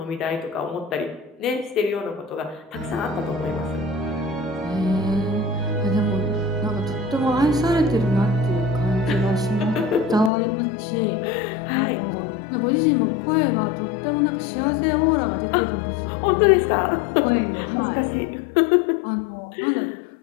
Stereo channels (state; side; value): drops out; right; at 10.3 s